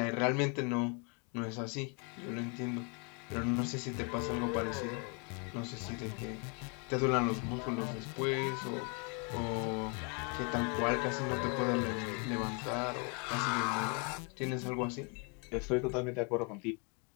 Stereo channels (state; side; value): quieter; right; 34.8 dB